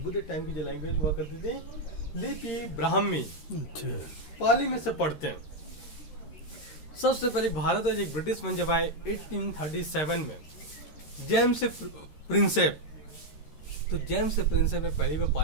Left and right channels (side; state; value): right; late; 13 ms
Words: टाइम की जो लैंग्वेज हुआ करती थी लिपि ब्राह्मी, पाली में से पढ़ते हैं। सबसे पहले भारत में एक ब्रिटिश मन जब आए 1837 में, जेम्स प्रिंसेप। तो जेम्स प्रिंसेप ने पहली बार